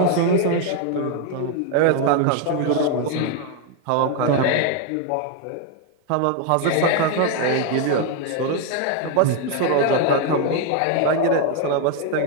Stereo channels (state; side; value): different; both; correlation 0.01